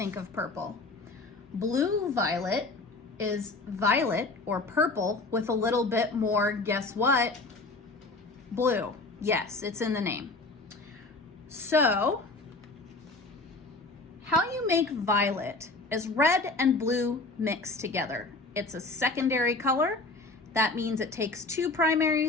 of purple. Blue violet is violet or purple with a little bit more, guess what? Blue. Yes, it's in the name. So, how you make violet is red and blue mixed together. It's a secondary color. That means it takes two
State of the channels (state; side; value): quieter; right; 3.3 dB